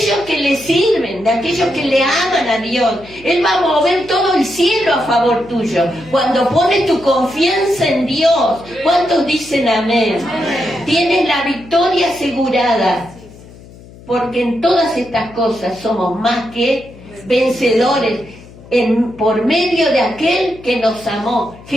que le sirven, de aquellos que le aman a Dios. Él va a mover todo el cielo a favor tuyo. Cuando pones tu confianza en Dios, ¿cuántos dicen amén? Amén. Tienes la victoria asegurada. Porque en todas estas cosas somos más que vencedores por medio de aquel que nos amó,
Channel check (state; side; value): noise; left; hum, 20 dB below the sound